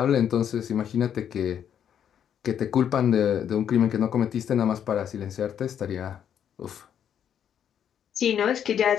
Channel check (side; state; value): right; quieter; 9.0 dB